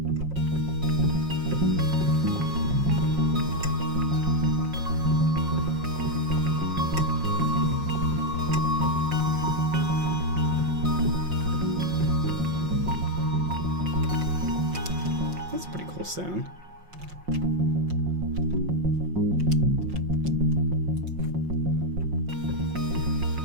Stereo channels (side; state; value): left; late; 5.6 ms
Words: That's a pretty cool sound.